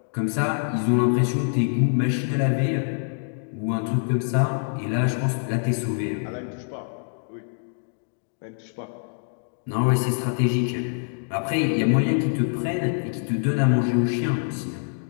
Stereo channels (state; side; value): silent; right; digital silence